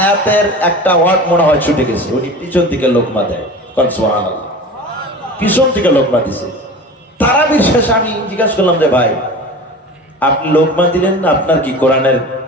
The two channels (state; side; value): normal; both; correlation 0.35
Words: একটা ওয়ার্ড মনে হয় ছুটে গেছে, উনি পিছন থেকে লোকমা দেয়। সুবহানাল্লাহ, পিছন থেকে লোকমা দিছে। তারাবির শেষে আমি জিজ্ঞাসা করলাম যে ভাই আপনি লোকমা দিলেন না, আপনার কি কোরআনের